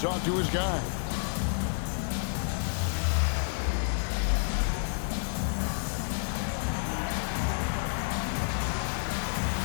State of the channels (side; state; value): right; silent; digital silence